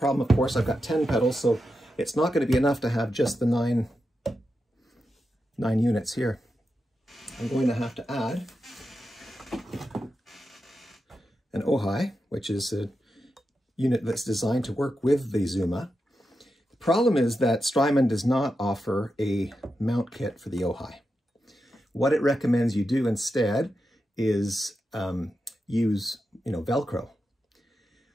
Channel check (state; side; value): normal; both; correlation 0.88